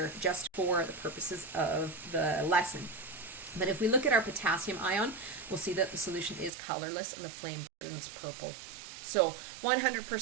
just for the purposes of the lesson. But if we look at our potassium ion, we'll see that the solution is colorless and the flame burns purple. So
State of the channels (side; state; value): left; drops out; at 6.5 s